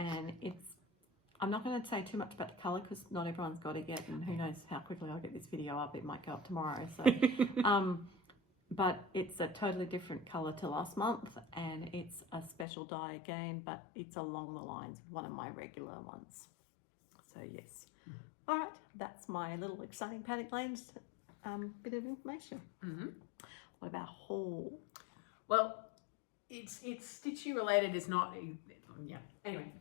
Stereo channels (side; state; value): right; drops out; at 12.7 s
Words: I'm not going to say too much about the colour because not everyone's got it yet, and who knows how quickly I'll get this video up. It might go up tomorrow. So, but it's a totally different colour to last month, and it's a special dye again, but it's along the lines of one of my regular ones. So yes. All right, that's my little exciting Paddock Lane's bit of information. What about haul? Well, it's stitchy related. It's not. Anyway,